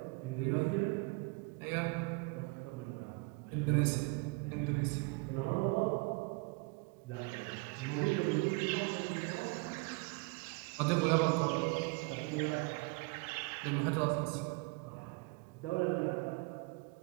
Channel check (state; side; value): quieter; left; 28.2 dB